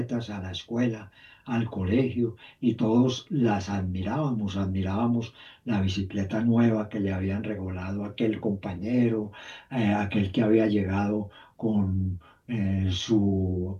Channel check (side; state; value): both; identical; correlation 1.00